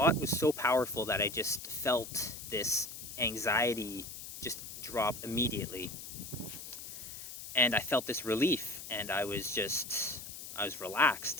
was so powerful that I just felt this anxiety just drop immediately. And I felt this relief, and I was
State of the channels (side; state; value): left; noise; hiss, 10 dB below the sound